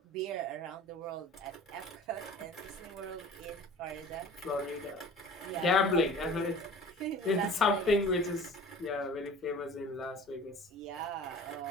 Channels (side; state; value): both; normal; correlation 0.43